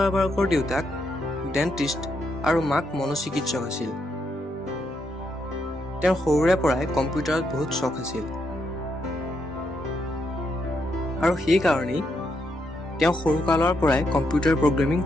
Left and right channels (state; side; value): normal; both; correlation 0.79